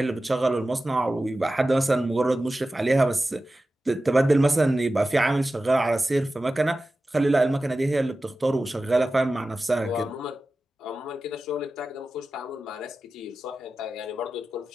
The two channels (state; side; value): normal; both; correlation 0.94